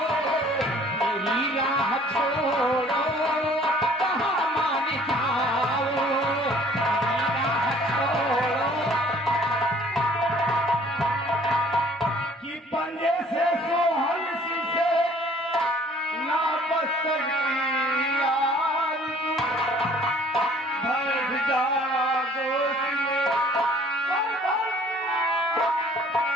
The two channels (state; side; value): normal; both; correlation 0.55